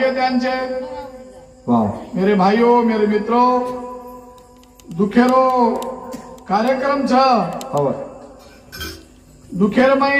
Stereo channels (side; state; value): both; identical; correlation 1.00